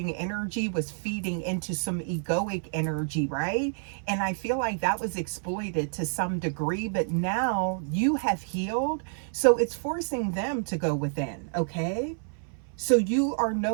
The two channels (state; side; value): silent; left; 59 dB below the other